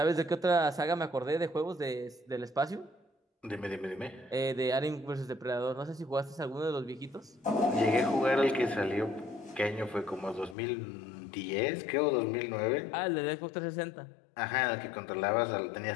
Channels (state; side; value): drops out; right; at 10.6 s